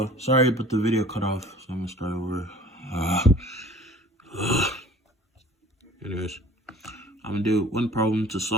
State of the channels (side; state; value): both; normal; correlation 0.48